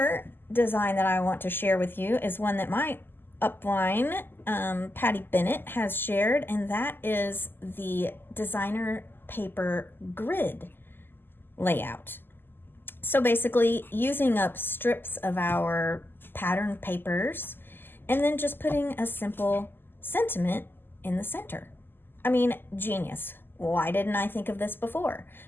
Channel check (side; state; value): right; late; 0.097 ms